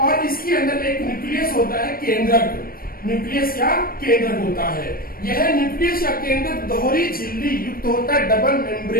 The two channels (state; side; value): late; right; 0.43 ms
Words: इसके अंदर एक न्यूक्लियस होता है, केंद्रक। न्यूक्लियस या केंद्रक होता है। यह न्यूक्लियस या केंद्रक दोहरी झिल्ली युक्त होता है, डबल